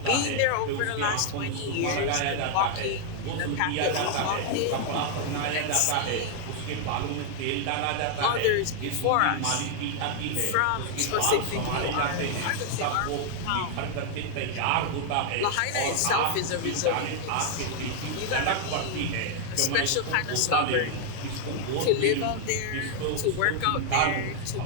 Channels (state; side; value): different; both; correlation 0.00